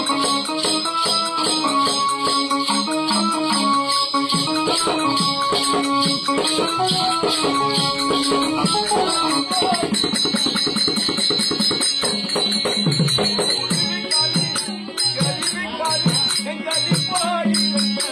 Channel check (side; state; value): both; identical; correlation 1.00